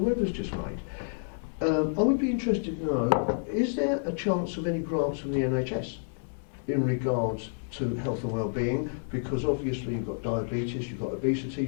Webber's just made, I would be interested to know, is there a chance of any grants from the NHS in regards to health and well-being? Because obviously you've got diabetes, you've got obesity,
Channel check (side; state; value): right; silent; 58 dB below the other